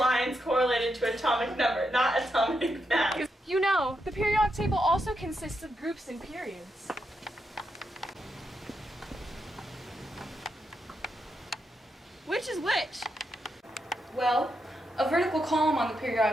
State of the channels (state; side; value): normal; both; correlation 0.83